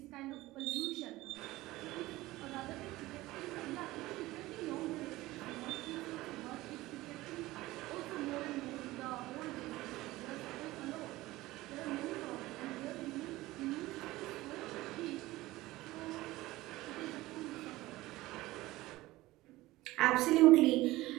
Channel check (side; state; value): left; quieter; 18.2 dB